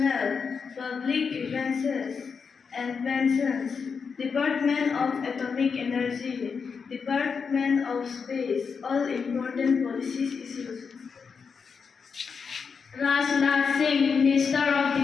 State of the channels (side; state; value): right; quieter; 5.7 dB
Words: Public Grievances and Pensions, Department of Atomic Energy, Department of Space, all important policies issues. Rajnath Singh, Minister of